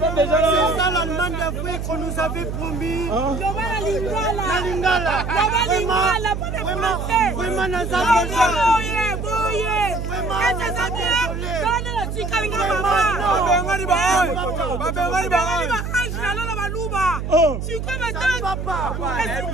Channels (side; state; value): right; noise; hum, 4 dB below the sound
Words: C'est ça l'Allemagne d'Afrique qu'on nous avait promis. Vraiment, nous avons